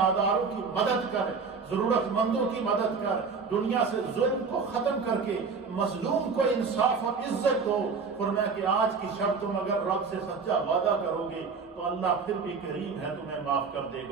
کی مدد کر، ضرورت مندوں کی مدد کر، دنیا سے ظلم کو ختم کر کے مظلوم کو انصاف اور عزت دو۔ فرمایا کہ آج کی شب تم اگر رب سے سچا وعدہ کرو گے تو اللہ پھر بھی کریم ہے، تمہیں معاف کر دے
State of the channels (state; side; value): quieter; left; 5.1 dB